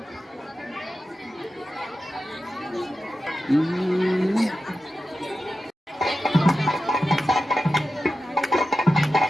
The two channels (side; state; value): both; normal; correlation 0.92